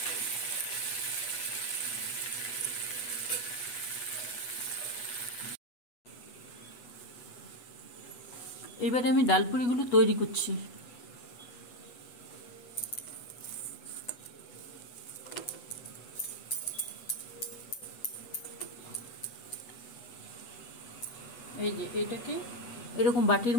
এবারে আমি ডালপুরিগুলো তৈরি করছি। এই যে এটাকে এরকম বাটির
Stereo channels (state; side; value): late; right; 8.1 ms